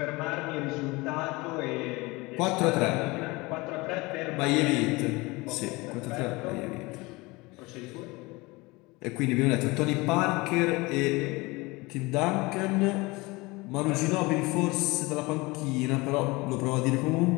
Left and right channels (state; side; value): quieter; right; 23.5 dB